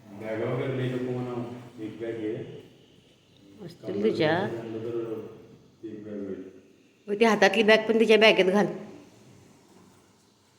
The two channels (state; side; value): identical; both; correlation 1.00